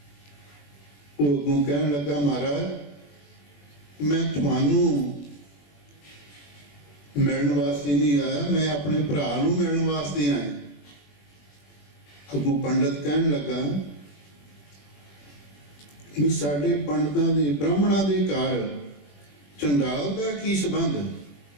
ਉਹ ਅੱਗੋਂ ਕਹਿਣ ਲੱਗਾ, ਮਹਾਰਾਜ, ਮੈਂ ਤੁਹਾਨੂੰ ਮਿਲਣ ਵਾਸਤੇ ਨਹੀਂ ਆਇਆ, ਮੈਂ ਆਪਣੇ ਭਰਾ ਨੂੰ ਮਿਲਣ ਵਾਸਤੇ ਆਇਆ। ਅੱਗੋਂ ਪੰਡਤ ਕਹਿਣ ਲੱਗਾ ਵੀ ਸਾਡੇ ਪੰਡਤਾਂ ਦੇ, ਬ੍ਰਾਹਮਣਾਂ ਦੇ ਘਰ ਚੰਡਾਲ ਦਾ ਕੀ ਸੰਬੰਧ?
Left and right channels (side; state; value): right; late; 21 ms